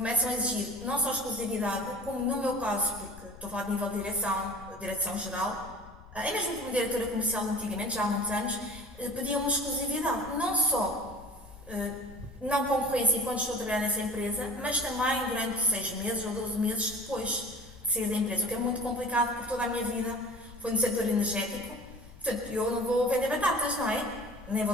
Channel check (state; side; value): noise; left; rumble, 19 dB below the sound